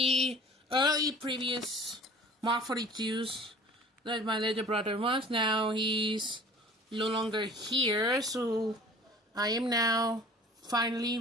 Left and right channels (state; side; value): normal; both; correlation 0.47